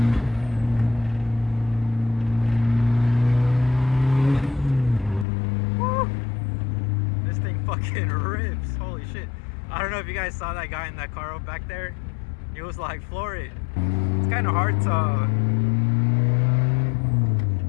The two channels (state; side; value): drops out; right; at 5.2 s